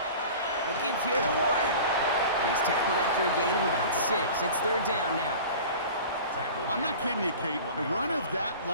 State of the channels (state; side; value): inverted; both; correlation -0.39